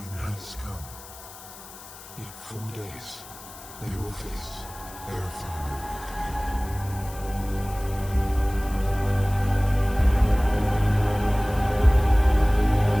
has come. In 4 days, they will face their final awakening.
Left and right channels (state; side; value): noise; left; hiss, 17 dB below the sound